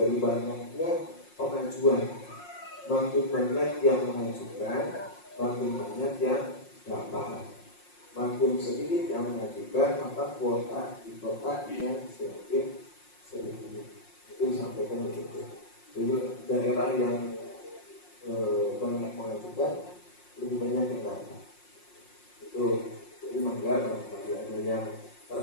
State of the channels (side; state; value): right; late; 5.6 ms